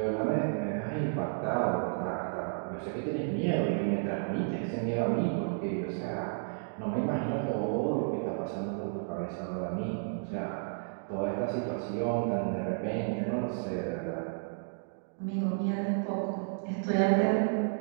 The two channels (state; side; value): silent; left; digital silence